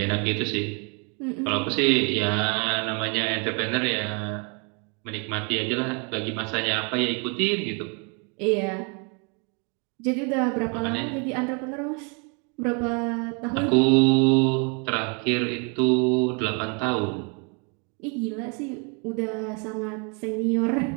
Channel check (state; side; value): quieter; left; 34.9 dB